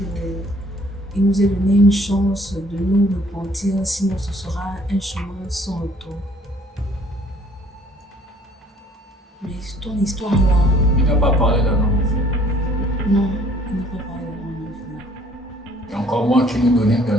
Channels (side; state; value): both; normal; correlation 0.58